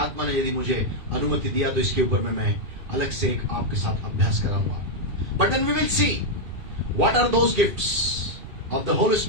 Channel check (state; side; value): late; left; 2.5 ms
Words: ने यदि मुझे अनुमति दिया तो इसके ऊपर में मैं अलग से एक आपके साथ अभ्यास कराऊंगा. But then we will see what are those gifts of the Holy